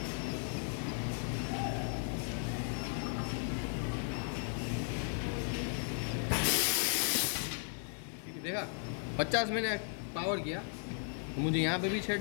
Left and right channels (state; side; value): silent; right; 54 dB below the other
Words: देखा 50 मैंने पावर किया तो मुझे यहाँ पे भी